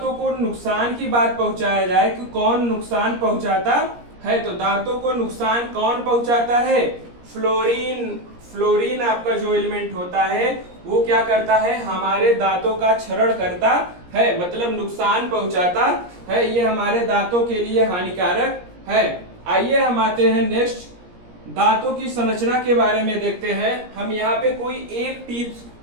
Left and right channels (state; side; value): late; left; 17 ms